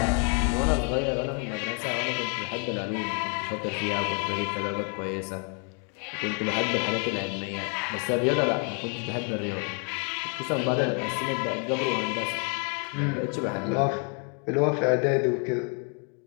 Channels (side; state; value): right; quieter; 38.5 dB